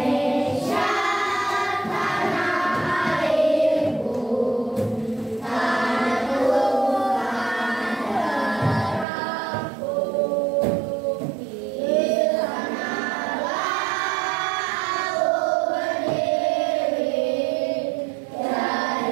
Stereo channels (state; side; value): drops out; left; at 9.1 s